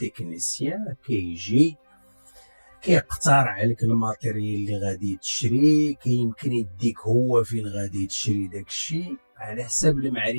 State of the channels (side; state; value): both; inverted; correlation -1.00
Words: كيجي كيقترح عليك الماتيريال اللي غادي تشري، كيمكن يديك هو فين غادي تشري داكشي على حساب